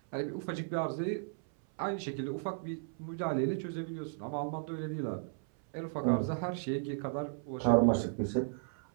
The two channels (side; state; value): left; silent; 54 dB below the other